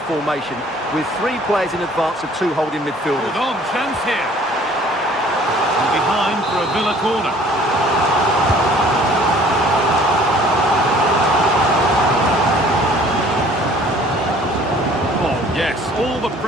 formation with 3 players in advance of 2 holding midfielders. Hold on, chance here. And behind for a Villa corner. Oh, yes, all the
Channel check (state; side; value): normal; both; correlation 0.54